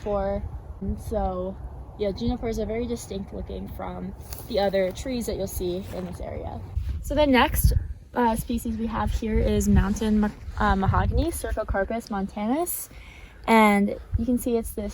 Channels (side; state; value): both; identical; correlation 1.00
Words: And so, yeah, junipers are very distinct looking from the other trees that you'll see in this area. So the next species we have here is mountain mahogany, CERCOCARPUS montanus. And you can see it's